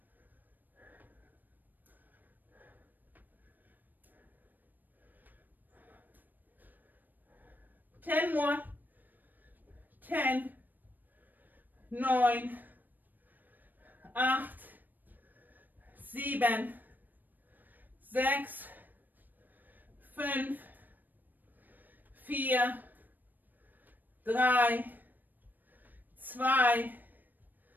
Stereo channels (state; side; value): late; left; 0.089 ms